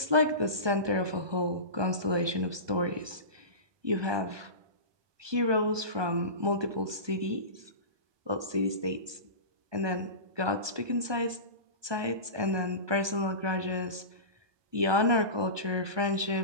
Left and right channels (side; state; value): left; late; 1.2 ms